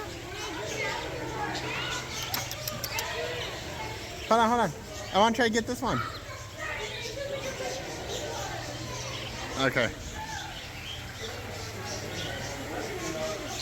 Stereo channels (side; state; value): both; identical; correlation 1.00